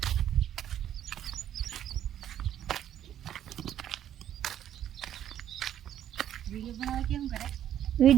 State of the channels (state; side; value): quieter; left; 10.8 dB